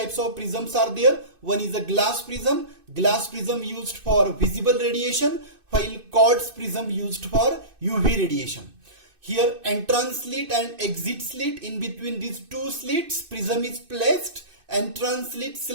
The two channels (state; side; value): late; left; 2.6 ms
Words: of prisms are there. One is a glass prism used for visible radiation, while quartz prism used for UV radiation. Here entrance slit and exit slit, in between these two slits prism is placed. Entrance slit